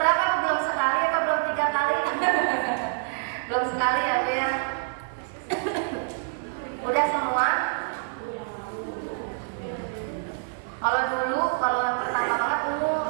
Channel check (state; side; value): silent; left; 55 dB below the other